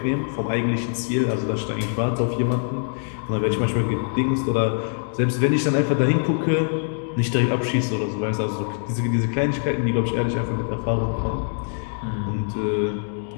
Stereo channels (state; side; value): silent; right; digital silence